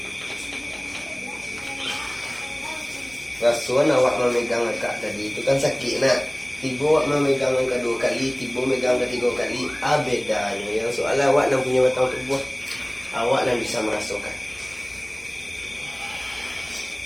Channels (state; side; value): noise; left; hum, 26 dB below the sound